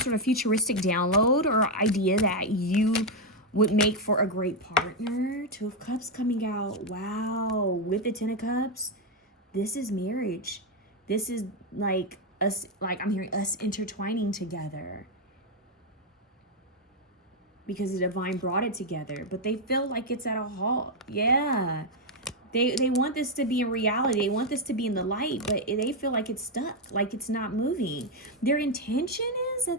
of futuristic download or idea that you would make for a great partner. Two of Cups coming out. Wow. With the Ten of Cups, this is marriage. This is like us, like I'm hearing us intertwining together because the divine brought it together, but they feel like it's at a halt. Yeah. They want this to be in reality. They want this to be in the light, but they feel like it's stuck, like it's not moving. Their intention is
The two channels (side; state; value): both; normal; correlation 0.03